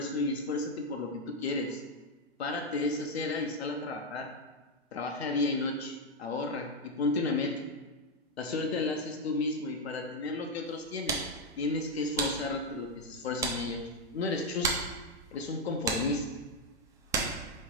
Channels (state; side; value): normal; both; correlation 0.04